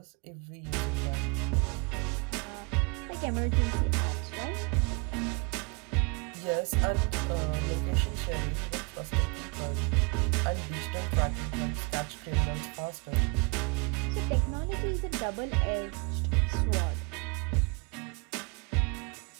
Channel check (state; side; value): quieter; left; 31.1 dB